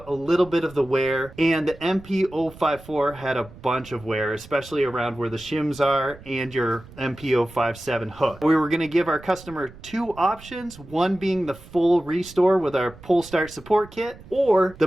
a little bit of the wear, and the MP054 had a bunch of wear, especially around where the shims are and your MP057 hook. We were going to give our customer two options, one being the full restore with our pull start support kit, or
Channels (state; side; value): noise; right; rumble, 20 dB below the sound